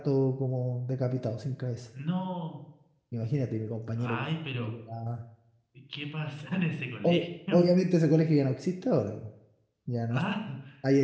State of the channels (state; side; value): identical; both; correlation 1.00